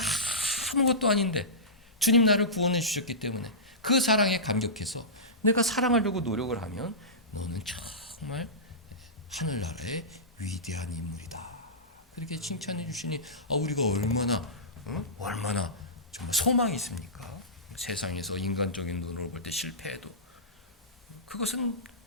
아무것도 아닌데 주님 나를 구원해 주셨기 때문에 그 사랑에 감격해서 내가 사랑하려고 노력을 하면 너는 정말 하늘나라의 위대한 인물이다. 그렇게 칭찬해 주시니 우리가 얼마나 정말 소망이 있습니까? 세상에서 인간적인 눈으로 볼 때 실패해도 그것은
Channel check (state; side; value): normal; both; correlation -0.19